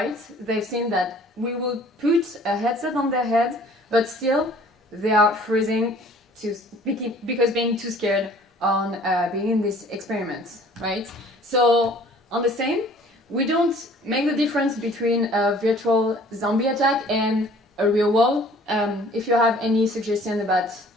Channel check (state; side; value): normal; both; correlation 0.52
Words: they've seen that we will put a headset on their head, but still they are freezing because being too scared on being in this experiment, right? So on the same, we don't make the difference between a virtual zombie attack and a real one. If you have any suggestion about